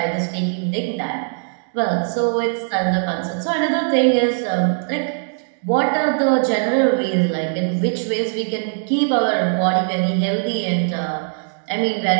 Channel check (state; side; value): silent; left; digital silence